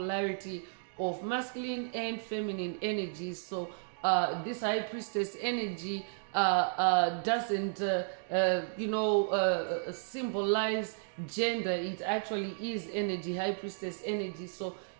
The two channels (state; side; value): silent; left; digital silence